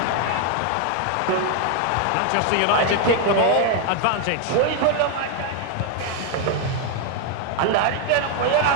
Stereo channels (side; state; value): both; different; correlation 0.01